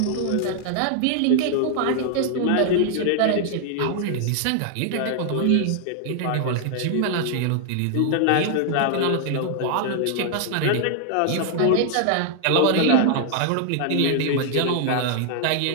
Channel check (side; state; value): both; different; correlation 0.00